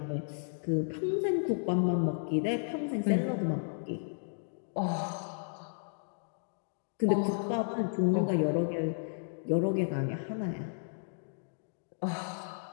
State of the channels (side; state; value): right; silent; digital silence